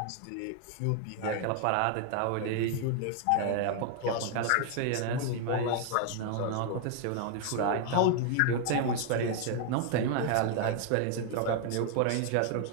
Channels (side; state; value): both; different; correlation 0.00